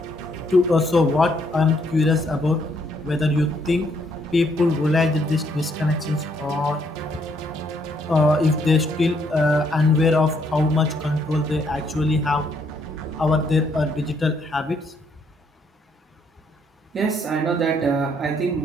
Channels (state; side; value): normal; both; correlation 0.71